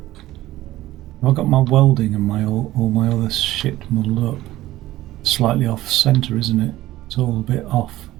I've got my welding and my all my other shit muddled up. Slightly off center, isn't it? It's all a bit off.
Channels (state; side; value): quieter; left; 15.8 dB